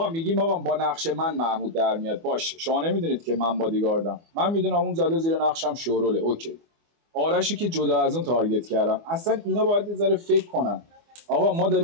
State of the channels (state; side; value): late; left; 24 ms